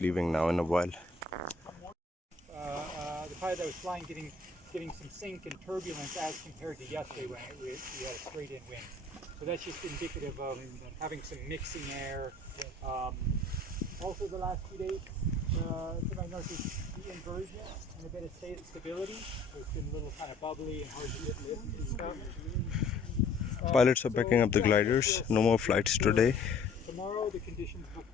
now in a while. The pilot that was flying getting some sink and turbulence as compared to yesterday when we had a straight in wind. So that's just indicative of having some mixing air. Also the last few days, to my northeast, the inversion and a bit of stability. So it's been a little kind of bubbly and hard to get lift and stuff. Pilots are packing up the gliders. No more flights today. Tomorrow the conditions look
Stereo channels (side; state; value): right; quieter; 3.5 dB